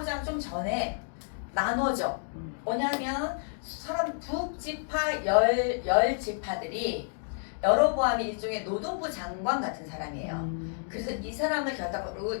좀 전에 나눠져. 뭐냐면 사람 북지파 열 지파들이 여로보암이 일종의 노동부 장관 같은 사람이에요. 그래서 이 사람을 결단으로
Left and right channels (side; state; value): right; silent; digital silence